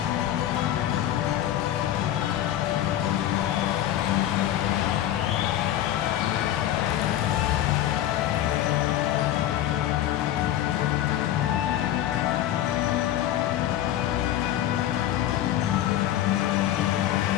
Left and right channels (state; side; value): quieter; right; 12.5 dB